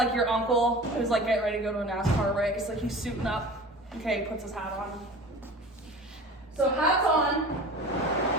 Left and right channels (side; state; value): both; normal; correlation 0.38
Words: your uncle who's like getting ready to go to a NASCAR race, like he's suiting up. Okay, he puts his hat on. So hats on.